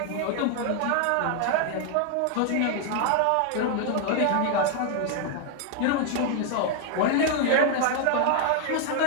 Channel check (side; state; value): both; different; correlation 0.00